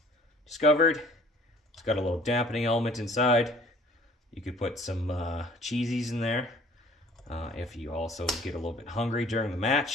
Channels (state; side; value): normal; both; correlation 0.54